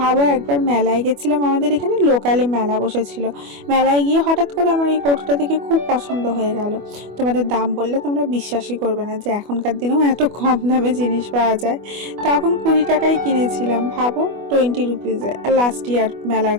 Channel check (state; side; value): late; left; 25 ms